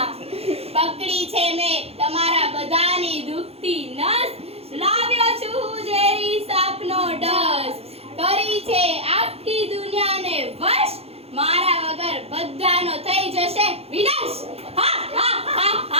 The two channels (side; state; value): left; late; 0.29 ms